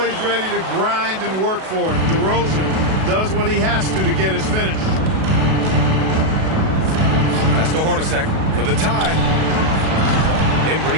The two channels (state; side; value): late; left; 37 ms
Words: ready to grind and work for it. DeRozan does what he has to get his finish. Pass to Hornacek for the tie. Embry